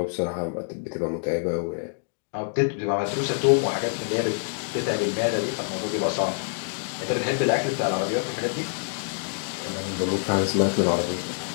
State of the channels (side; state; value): right; silent; digital silence